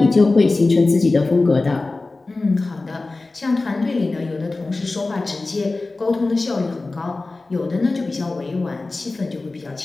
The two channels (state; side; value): quieter; right; 3.3 dB